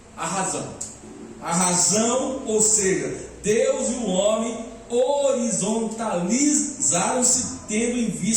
a razão. A razão, ou seja, Deus e o homem horizontalizaram-se, tendo em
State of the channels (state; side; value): identical; both; correlation 1.00